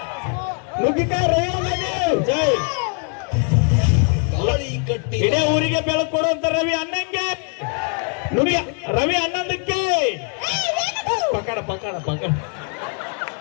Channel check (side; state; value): right; quieter; 39.5 dB